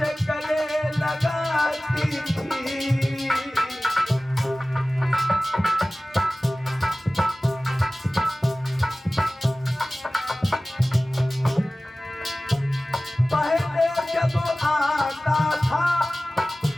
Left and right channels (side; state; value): both; normal; correlation 0.97